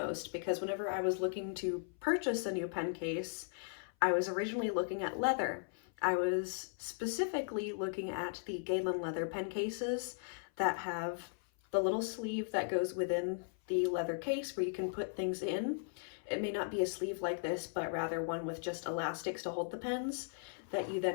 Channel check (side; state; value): right; silent; 53 dB below the other